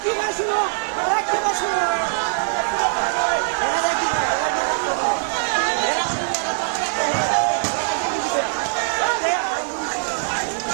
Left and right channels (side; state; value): left; silent; digital silence